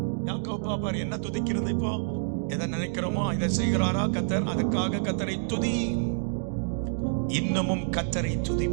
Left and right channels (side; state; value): left; silent; digital silence